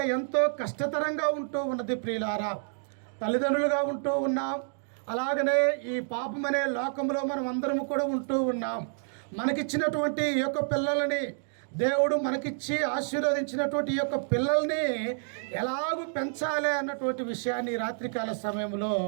ఎంతో కష్టతరంగా ఉంటూ ఉన్నది. ప్రియులారా, తల్లిదండ్రులుగా ఉంటూ ఉన్నాం. అలాగనే ఈ పాపమనే లోకంలో మనం అందరం కూడా ఉంటూ ఉన్నాం. మనకిచ్చినటువంటి ఈ యొక్క పిల్లలని దేవుడు మనకిచ్చి ఆశీర్వదించినటువంటి ఈ యొక్క పిల్లల్ని ఎలాగూ పెంచాలి అన్నటువంటి విషయాన్ని రాత్రికాల సమయంలో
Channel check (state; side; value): silent; left; digital silence